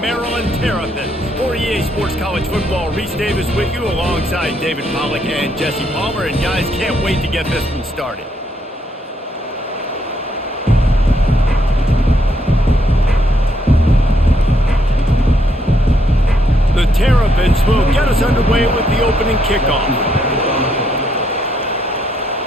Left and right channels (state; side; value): normal; both; correlation 0.74